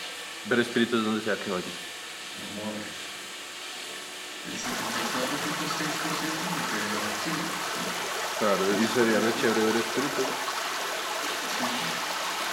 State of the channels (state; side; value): identical; both; correlation 1.00